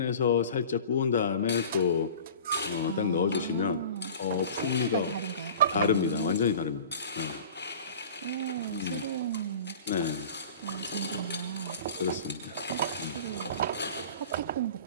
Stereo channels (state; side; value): inverted; both; correlation -0.41